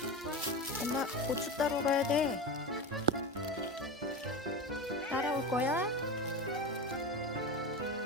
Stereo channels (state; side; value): normal; both; correlation 0.24